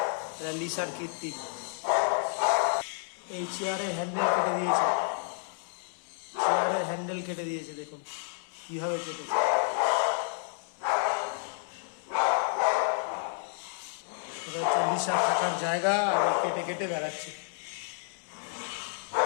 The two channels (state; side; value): silent; right; 58 dB below the other